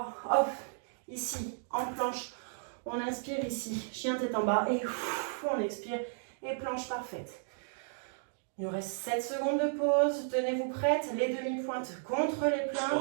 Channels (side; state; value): left; silent; digital silence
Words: Hop, ici, en planche, on inspire ici, chien tête en bas, et on expire, et planche parfaite. Il nous reste 7 secondes de pause. Tenez-vous prêtes, les demi-pointes contre les